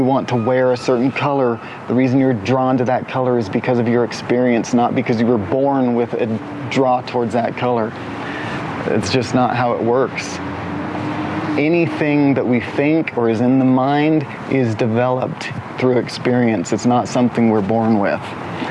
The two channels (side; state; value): both; identical; correlation 1.00